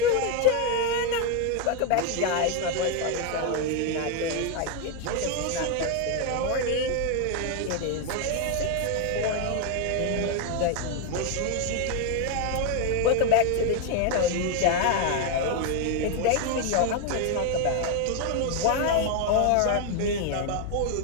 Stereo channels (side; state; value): both; different; correlation 0.01